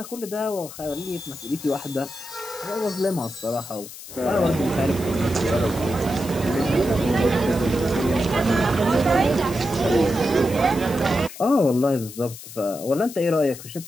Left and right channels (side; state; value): left; noise; hiss, 14 dB below the sound